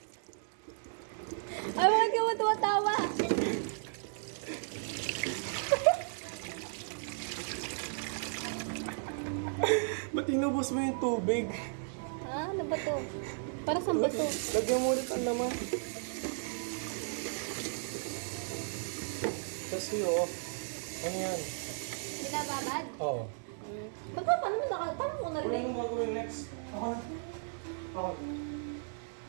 Ay, bakit ka mo tumatawa? Ba't inubos mo yung tubig? Ha? Ano ba to? Para saan ba to? Lagyan mo ulit ang laman. Kasi oh. Ano yan? Binababad? Oo. Ba't ba? Paano mo paano mo Ano narinig? yung gagawin next? Ako na. Ako.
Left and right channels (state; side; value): silent; left; digital silence